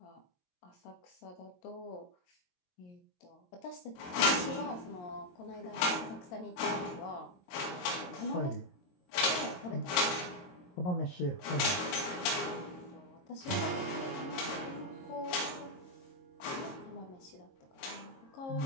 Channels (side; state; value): right; late; 22 ms